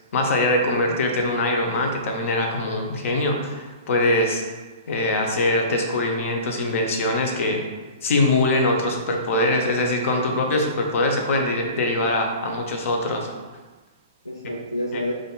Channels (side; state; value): both; inverted; correlation -0.38